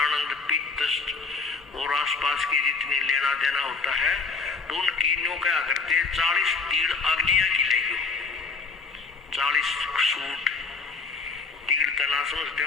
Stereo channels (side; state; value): right; quieter; 4.4 dB